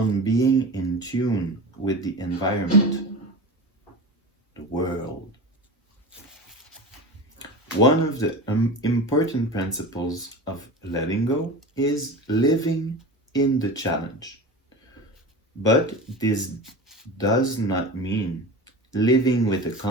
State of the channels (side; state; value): both; normal; correlation 0.29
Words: being in tune with the environment, the world. One of the important principles of letting go is living in the challenge. But this does not mean living with a